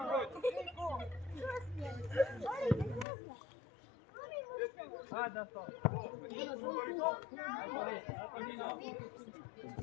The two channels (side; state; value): right; drops out; at 3.1 s